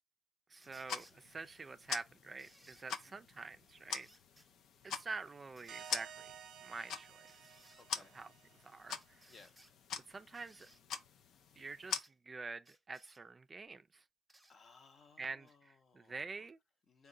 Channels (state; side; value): normal; both; correlation 0.70